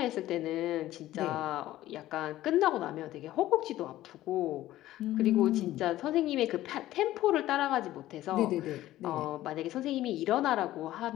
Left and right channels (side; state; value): right; quieter; 14.8 dB